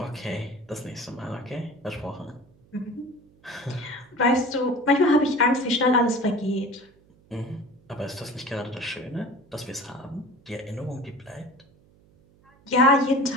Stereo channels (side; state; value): right; noise; hum, 29 dB below the sound